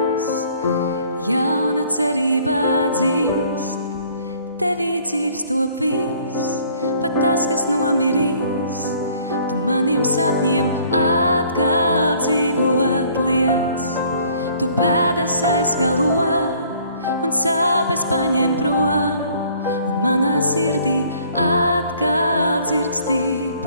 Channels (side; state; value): both; inverted; correlation -0.58